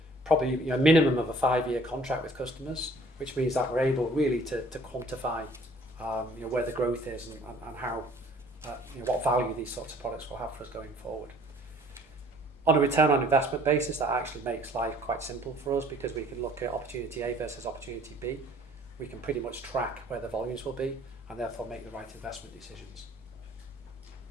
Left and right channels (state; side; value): normal; both; correlation 0.56